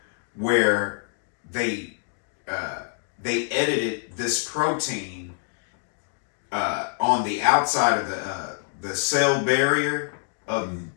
where they edited this protein on the outside of the cell barrier of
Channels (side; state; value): right; silent; 61 dB below the other